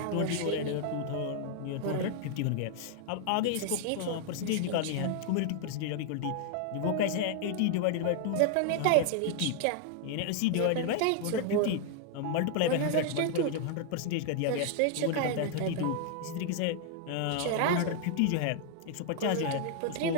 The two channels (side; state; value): both; different; correlation 0.00